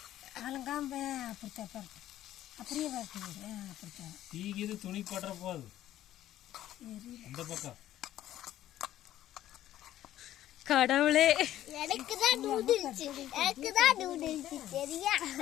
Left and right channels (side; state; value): right; quieter; 13.0 dB